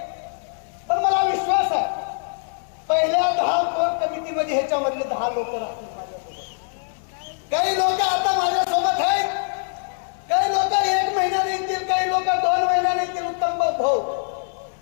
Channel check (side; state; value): right; silent; 61 dB below the other